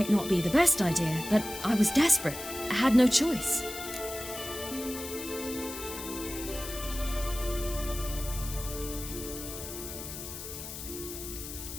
not be the best idea, but I was desperate. I had no choice.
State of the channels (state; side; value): noise; left; hiss, 9 dB below the sound